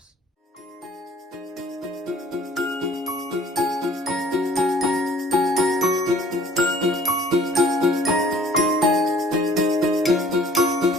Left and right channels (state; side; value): normal; both; correlation 0.53